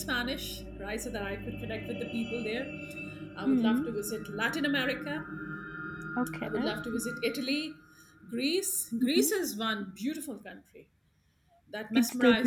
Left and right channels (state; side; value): identical; both; correlation 1.00